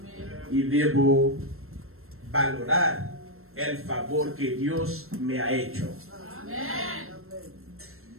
Y debo valorar el favor que Dios me ha hecho. Amén.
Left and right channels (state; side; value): late; left; 0.62 ms